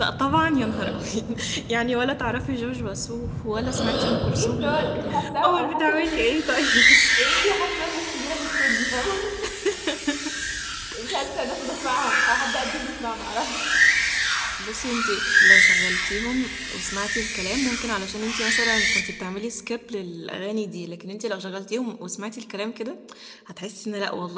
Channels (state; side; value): identical; both; correlation 1.00